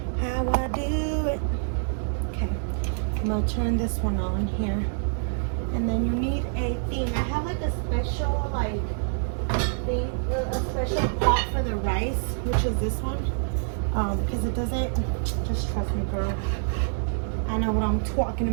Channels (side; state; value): left; silent; 61 dB below the other